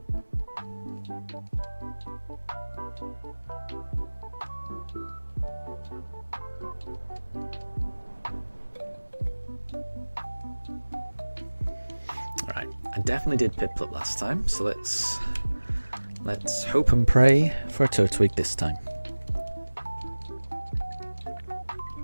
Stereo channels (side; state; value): both; inverted; correlation -1.00